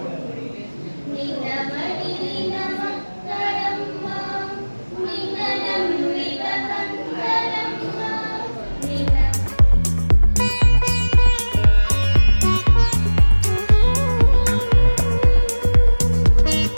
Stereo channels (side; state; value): both; inverted; correlation -1.00